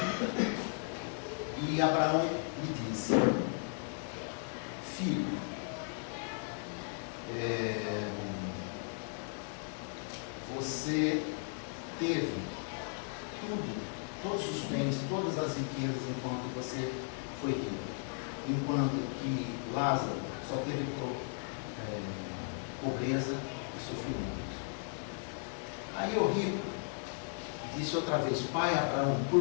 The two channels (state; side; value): silent; right; 54 dB below the other